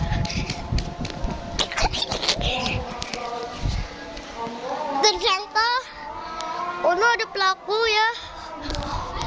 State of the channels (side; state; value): both; identical; correlation 1.00